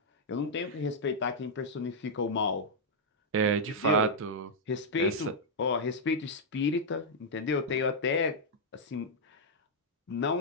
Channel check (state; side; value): normal; both; correlation -0.05